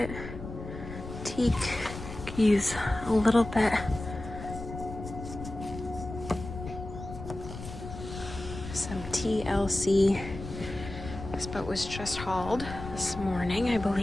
Teak. Could use a little bit. Some TLC. This boat was just hauled this morning, I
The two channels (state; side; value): noise; left; rumble, 10 dB below the sound